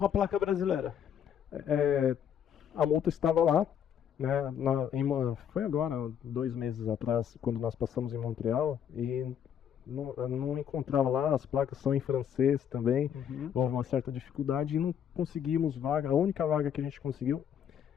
a placa brasileira? A multa estava lá, né? Foi agora, 2 meses atrás, quando nós passamos em Montreal, e não encontrava lá, as placas são em francês também, houve uma certa dificuldade e não conseguimos vaga. A única vaga que a gente conseguiu,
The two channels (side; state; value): right; quieter; 8.8 dB